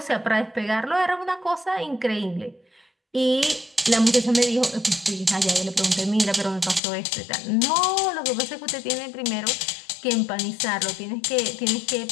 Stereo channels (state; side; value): drops out; right; at 6.8 s